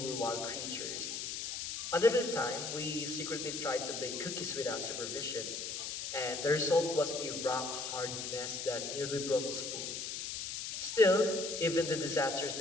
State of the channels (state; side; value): noise; left; hiss, 4 dB below the sound